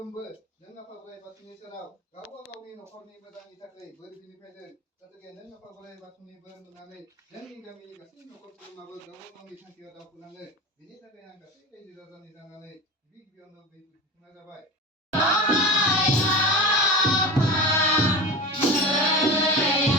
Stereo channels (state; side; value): normal; both; correlation 0.28